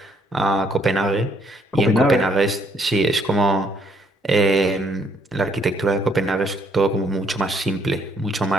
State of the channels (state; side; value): normal; both; correlation 0.68